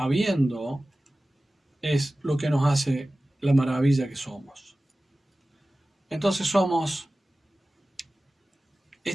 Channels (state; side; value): normal; both; correlation 0.96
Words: es lo que nos hace la maravilla que somos. Entonces somos